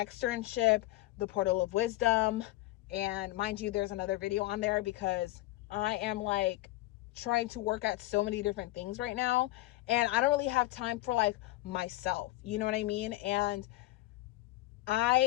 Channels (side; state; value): right; quieter; 17.8 dB